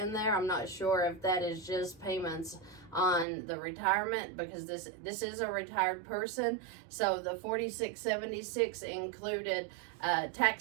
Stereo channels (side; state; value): left; drops out; at 3.2 s